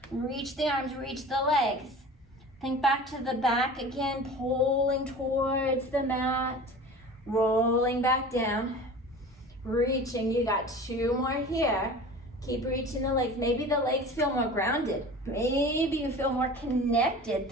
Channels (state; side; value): normal; both; correlation 0.38